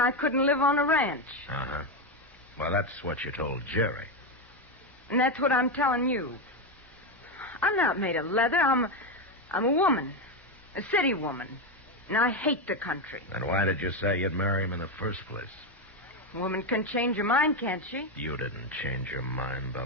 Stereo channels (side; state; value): both; normal; correlation 0.09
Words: couldn't live on a ranch. Uh-huh. Well, that's what you told Jerry. And that's what I'm telling you. I'm not made of leather. I'm a woman. A city woman. And I hate the country. Then why did you say you'd marry him in the first place? A woman can change her mind, can't she? You didn't change your mind,